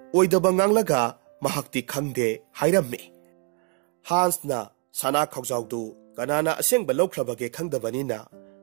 ओइदबा nganglगा महाक्ति खंगदे हाइरम्मी हांसना सना खौजावदु कनाना असेंगबा लौख्रबगे खंगदबनिना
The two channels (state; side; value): quieter; left; 35.8 dB